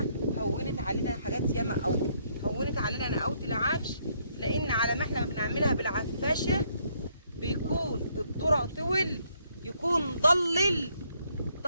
هونت علينا حاجات ياما قوي، هونت علينا نقاوه العفش، لان على ما احنا بنعملها بالعفاشه بيكون الذره طول، يكون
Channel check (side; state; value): both; inverted; correlation -0.70